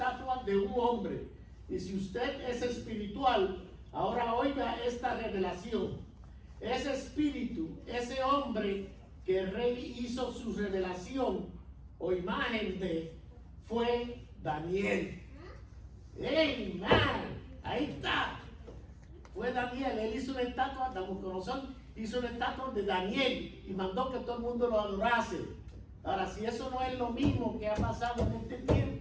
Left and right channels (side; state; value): both; identical; correlation 1.00